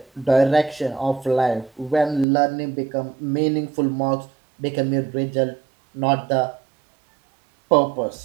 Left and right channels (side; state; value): left; drops out; at 2.2 s